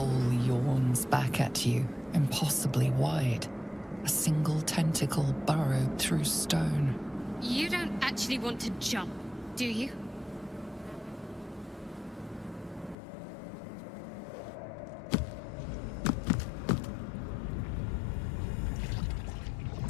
yawns back at you, impossibly wide. A single tentacle burrowed through stone. You don't actually want to jump, do you?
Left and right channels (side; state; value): right; drops out; at 13.0 s